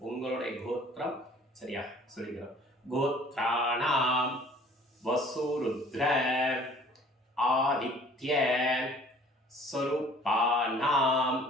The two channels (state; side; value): normal; both; correlation 0.52